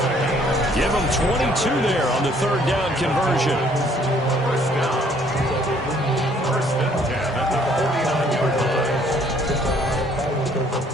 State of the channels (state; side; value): normal; both; correlation 0.62